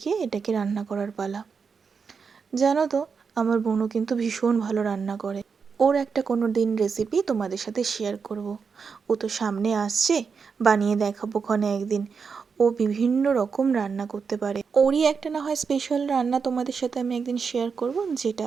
এটাকে রান্না করার পালা। জানো তো আমার বোনও কিন্তু ভীষণ ভালো রান্না করে। ওর একটা কোনো দিন রেসিপি তোমাদের সাথে শেয়ার করব। ও তো সামনে আসছে, বানিয়ে দেখাবো ক্ষণে একদিন। ও বিভিন্ন রকম রান্না করতে পারে। ওরই একটা না হয় স্পেশাল রান্না তোমাদের সাথে আমি একদিন শেয়ার করব,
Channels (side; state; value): left; quieter; 5.7 dB